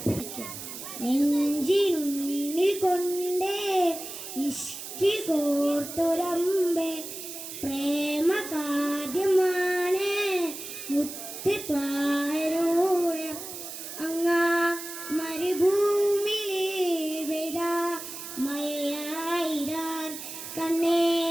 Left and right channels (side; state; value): right; noise; hiss, 10 dB below the sound